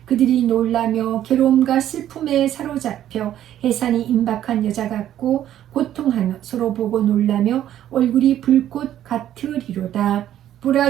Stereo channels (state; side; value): quieter; left; 11.6 dB